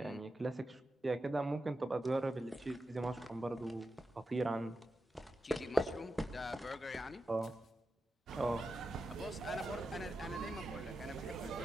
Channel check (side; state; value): both; normal; correlation 0.90